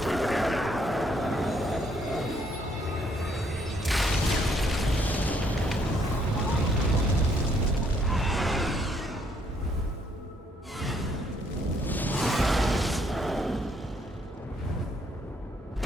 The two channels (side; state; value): both; normal; correlation 0.69